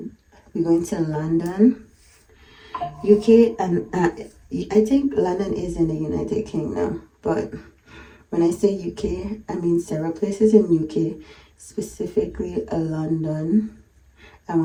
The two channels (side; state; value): both; identical; correlation 1.00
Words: We're going to London, UK, and I think London is in the United Kingdom, but when I say UK, I mean several places in UK, specifically London. I